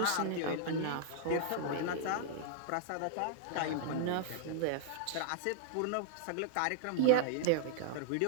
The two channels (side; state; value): both; different; correlation -0.01